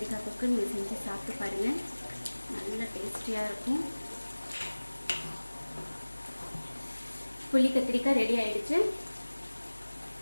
தொக்கு நீங்கள் செஞ்சு சாப்பிட்டு பாருங்கள், நல்ல டேஸ்டியாக இருக்கும். புளி கத்திரிக்காய் ரெடி ஆயிடுச்சு.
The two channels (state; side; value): inverted; both; correlation -1.00